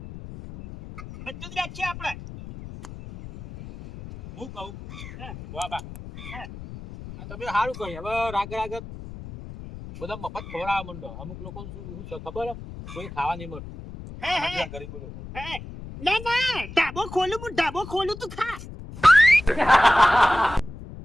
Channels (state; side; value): noise; left; rumble, 13 dB below the sound